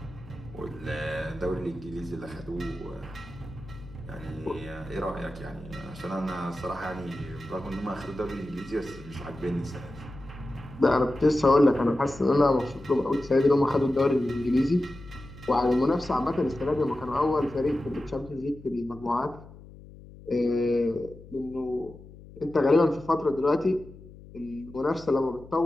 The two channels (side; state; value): left; noise; hum, 19 dB below the sound